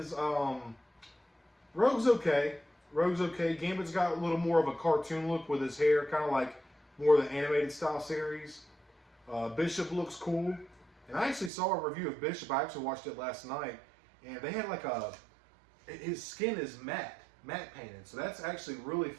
Rogue's okay. Rogue's okay. Gambit's got a little more of a cartoon look with his hair, kind of like more of the animated style series. Bishop looks cool. And I actually saw a review of Bishop. I actually watched it last night. And they had like his skin is matte painted. So that's actually really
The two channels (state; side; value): drops out; left; at 11.5 s